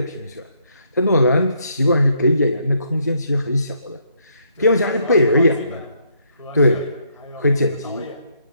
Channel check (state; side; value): inverted; both; correlation -0.72